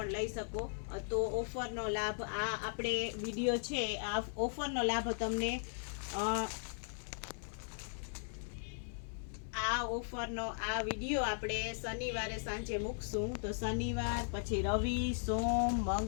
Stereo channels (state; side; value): silent; right; digital silence